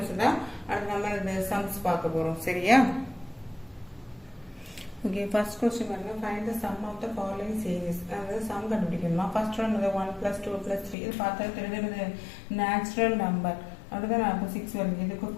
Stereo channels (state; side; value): drops out; right; at 11.0 s